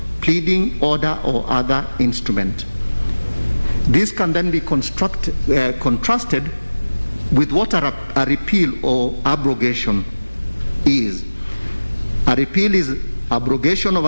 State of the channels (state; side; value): inverted; both; correlation -1.00